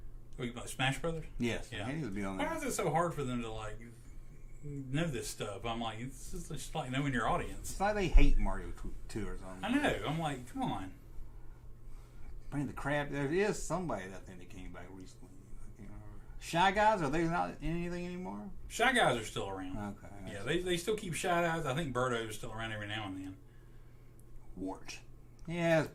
Smash Brothers? Yes. Yeah. He needs to be on there. Why is it so hard for them to, like, know this stuff? I'm like, it's just like knowing your audience. It's like they hate Mario 2 or something. I know. I'm like, come on. Bring the crap. There is somebody that thing that came back recently. Shy Guys, are they not in anything anymore? Shy Guys are still around. Okay. Yeah, they still keep Shy Guys. I think Birdo is still around every now and then. Wart. Yeah,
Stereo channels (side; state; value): both; identical; correlation 1.00